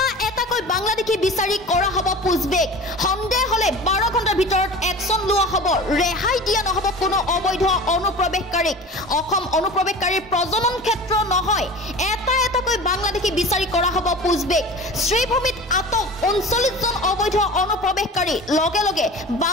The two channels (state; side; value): normal; both; correlation 0.36